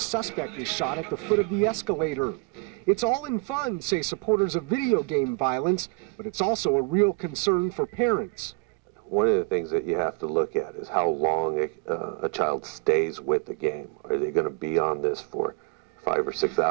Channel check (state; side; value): quieter; left; 27.7 dB